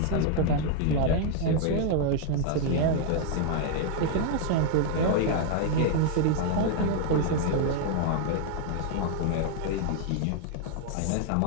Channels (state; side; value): different; both; correlation 0.00